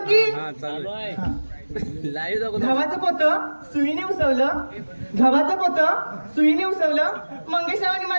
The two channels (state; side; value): inverted; both; correlation -1.00